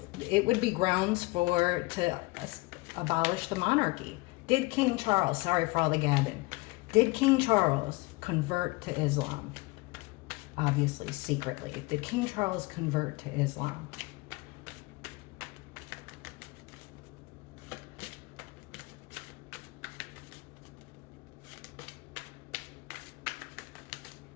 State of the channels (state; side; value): quieter; right; 23.8 dB